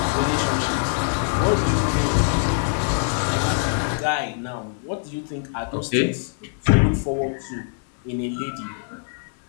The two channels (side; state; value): right; silent; 61 dB below the other